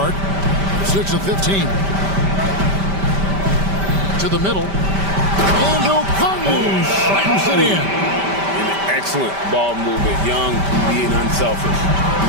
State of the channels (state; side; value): late; left; 5.1 ms